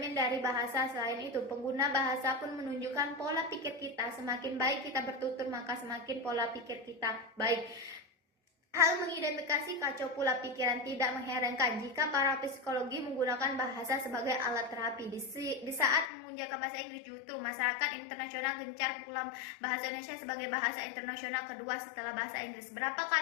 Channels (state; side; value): drops out; right; at 16.1 s